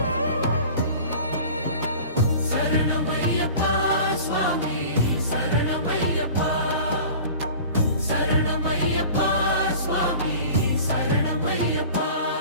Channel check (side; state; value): both; inverted; correlation -0.41